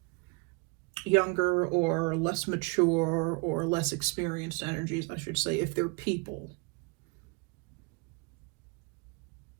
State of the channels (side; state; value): left; quieter; 30.5 dB